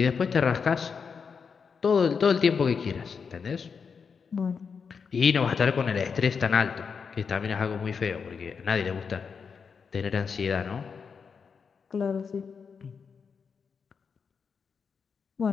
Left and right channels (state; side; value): quieter; right; 5.9 dB